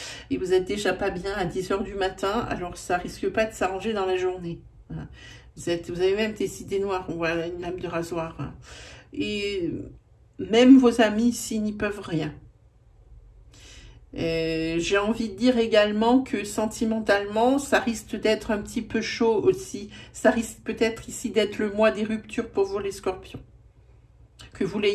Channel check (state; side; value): identical; both; correlation 1.00